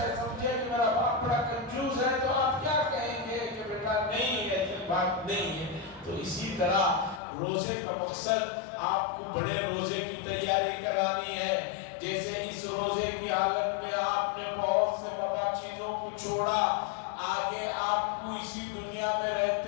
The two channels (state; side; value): drops out; right; at 7.2 s